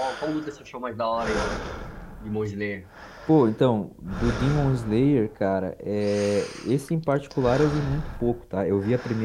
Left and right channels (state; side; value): identical; both; correlation 1.00